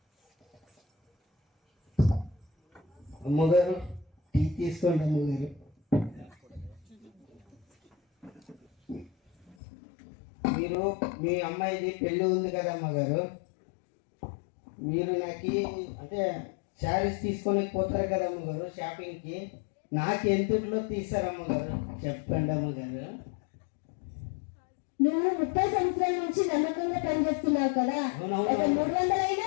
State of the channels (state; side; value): drops out; right; at 9.6 s